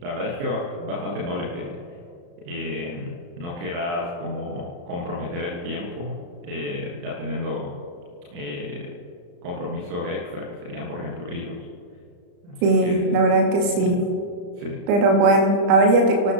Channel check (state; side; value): late; left; 35 ms